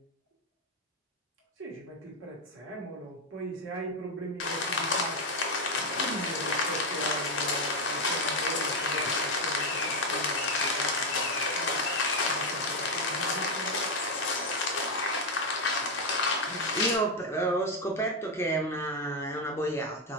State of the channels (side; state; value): both; normal; correlation 0.05